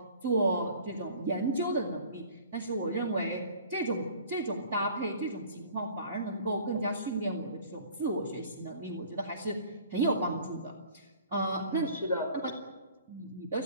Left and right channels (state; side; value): inverted; both; correlation -0.48